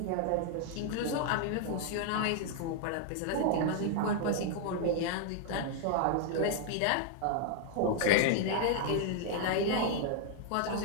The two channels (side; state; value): both; different; correlation 0.00